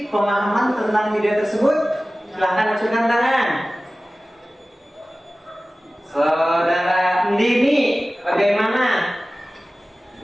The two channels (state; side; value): normal; both; correlation 0.97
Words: pemahaman tentang video tersebut? Silahkan ajukan tangan. Saudara Dini, bagaimana?